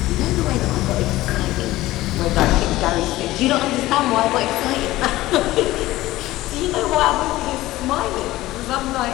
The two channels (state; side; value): quieter; right; 16.9 dB